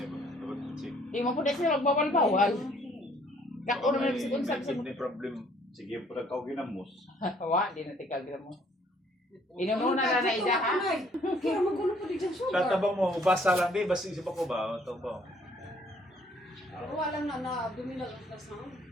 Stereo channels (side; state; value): both; normal; correlation 0.62